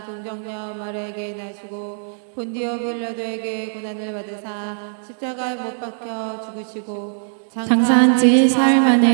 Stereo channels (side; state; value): left; silent; digital silence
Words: 동정녀 마리아에게 나시고 본디오 빌라도에게 고난을 받으사 십자가에 못 박혀 죽으시고 장사한 지 사흘